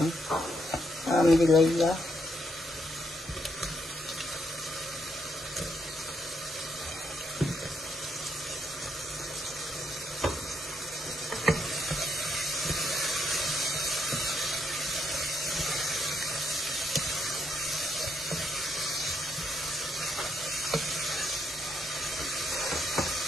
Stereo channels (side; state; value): both; normal; correlation 0.76